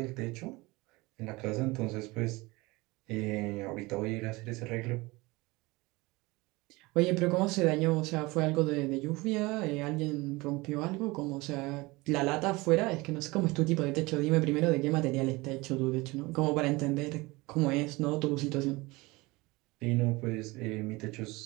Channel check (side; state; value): left; quieter; 22.8 dB